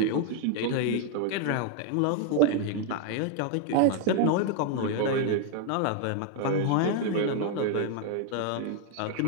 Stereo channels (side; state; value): both; different; correlation 0.00